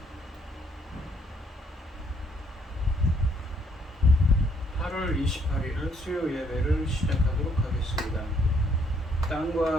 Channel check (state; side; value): normal; both; correlation 0.68